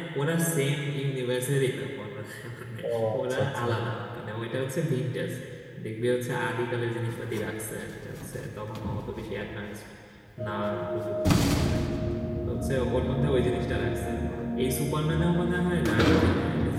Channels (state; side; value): identical; both; correlation 1.00